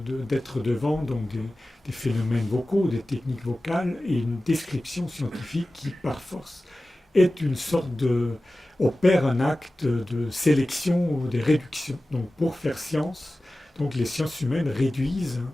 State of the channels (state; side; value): normal; both; correlation 0.96